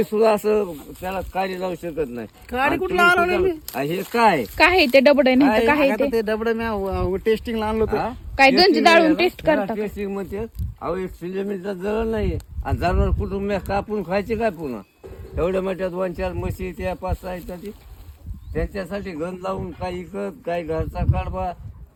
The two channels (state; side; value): identical; both; correlation 1.00